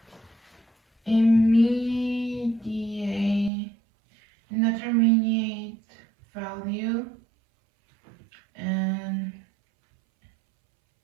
indeterminate value and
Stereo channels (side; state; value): left; drops out; at 3.5 s